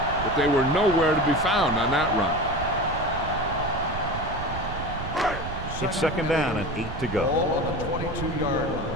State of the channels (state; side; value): noise; right; rumble, 8 dB below the sound